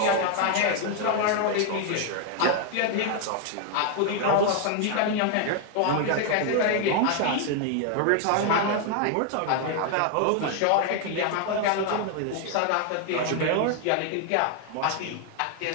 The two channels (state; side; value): different; both; correlation 0.01